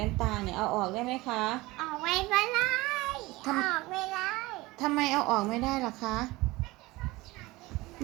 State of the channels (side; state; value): left; quieter; 20.8 dB